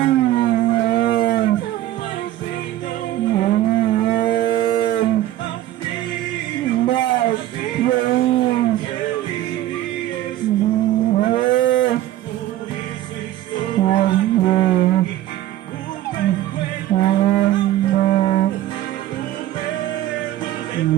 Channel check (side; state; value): left; quieter; 13.9 dB